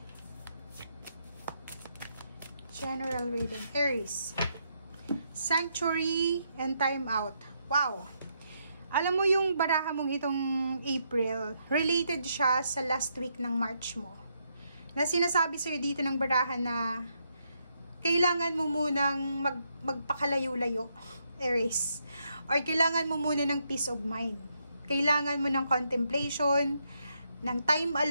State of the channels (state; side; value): inverted; both; correlation -0.78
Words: General reading, Aries. Sanctuary and time out. Wow! Alam mo yung baraha mong itong April, related siya sa last week ng March mo. Na sinasabi sa'yo dito ng baraha na kailangan mo munang magpakalayo-layo, Aries. Or kailangan mo muna ng peace of mind. Kailangan mo ng contemplation, ng time